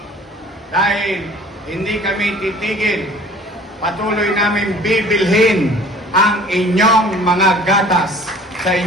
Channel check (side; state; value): both; normal; correlation 0.49